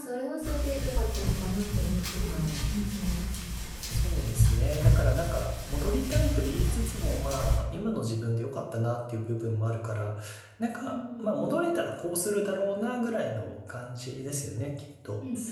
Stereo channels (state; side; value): identical; both; correlation 1.00